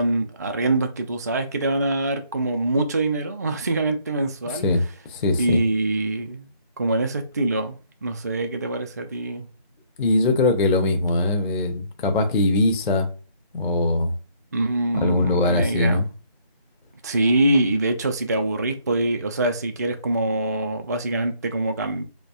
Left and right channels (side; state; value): both; inverted; correlation -0.66